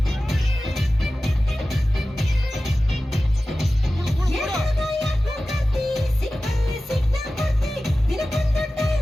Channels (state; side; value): normal; both; correlation 0.95